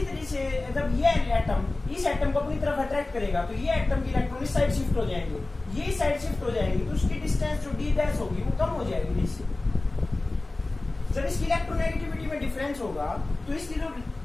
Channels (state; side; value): quieter; right; 3.0 dB